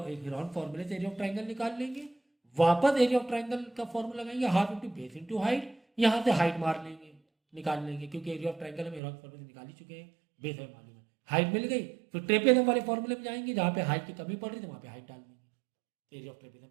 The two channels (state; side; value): drops out; left; at 9.0 s